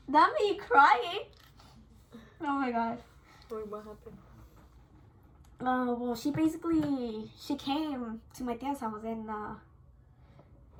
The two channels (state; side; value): identical; both; correlation 1.00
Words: that made me crying. Oh my god. Wait, what happened? Well, she came to my tia's house, and